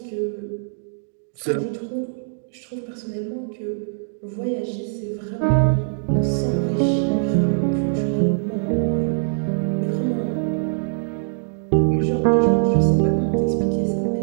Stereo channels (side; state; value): left; silent; digital silence